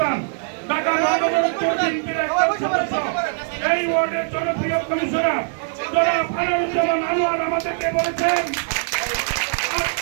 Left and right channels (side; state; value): left; silent; 63 dB below the other